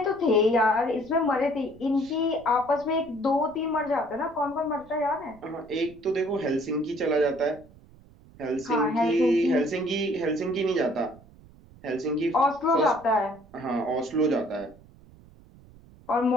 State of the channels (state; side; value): noise; right; rumble, 24 dB below the sound